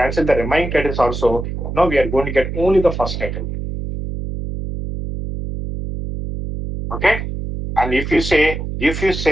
the remaining titles also, now we are going to get only the first title. Okay. And if you say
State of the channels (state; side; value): noise; right; hum, 5 dB below the sound